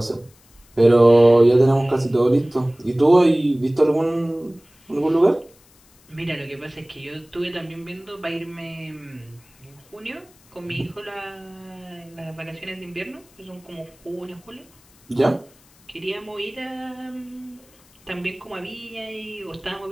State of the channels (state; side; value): noise; left; hiss, 29 dB below the sound